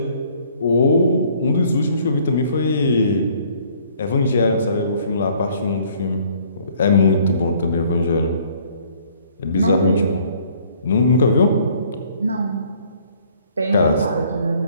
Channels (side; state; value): both; inverted; correlation -0.59